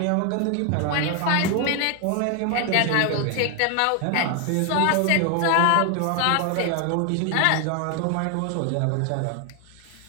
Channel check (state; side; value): different; both; correlation 0.00